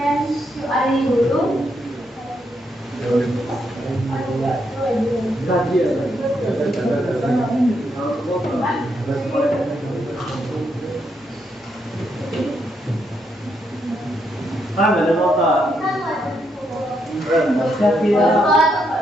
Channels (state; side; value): normal; both; correlation 0.78